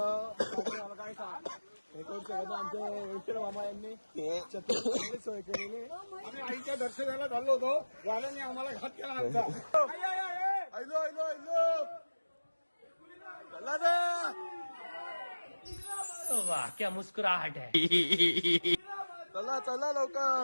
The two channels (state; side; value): inverted; both; correlation -1.00